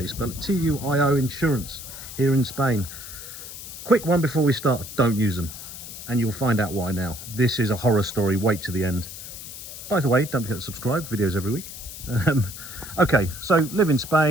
you spell it, TUIO Insurance here in Spain. Quick one before we start, don't use them. And you'll find out why now. This is a horror story, wait to the end. By the way, don't forget to subscribe, videos every week. Okay, so live in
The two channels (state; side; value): noise; left; hiss, 12 dB below the sound